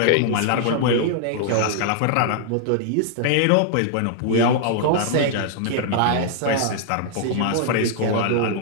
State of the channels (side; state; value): both; different; correlation -0.01